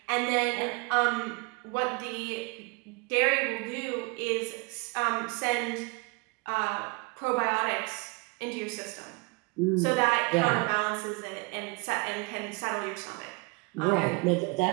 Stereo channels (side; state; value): left; quieter; 28.6 dB